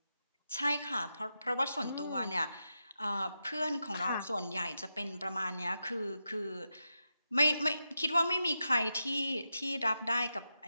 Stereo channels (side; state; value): both; inverted; correlation -0.88